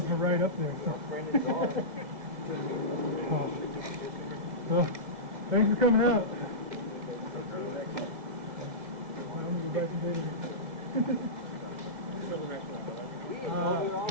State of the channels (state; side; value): late; left; 2.0 ms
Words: were right up there. So. So thanks for coming out. I'm gonna go back to bed.